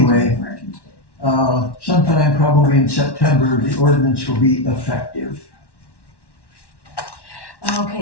sometime probably in September, the ordinance will be effective.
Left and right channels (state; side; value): late; right; 1.1 ms